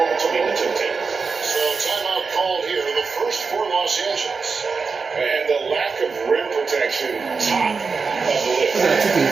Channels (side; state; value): left; quieter; 4.9 dB